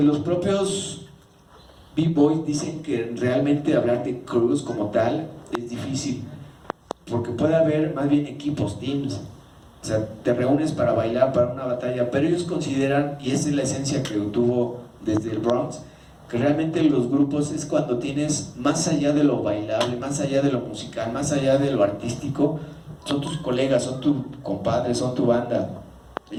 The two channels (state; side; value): identical; both; correlation 1.00